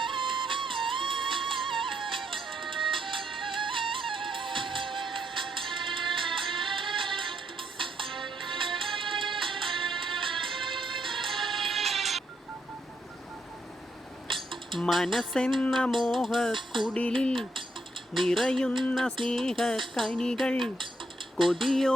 മനസ്സെന്ന മോഹക്കുടിലിൽ നിറയുന്ന സ്നേഹക്കനികൾ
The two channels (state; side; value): normal; both; correlation 0.76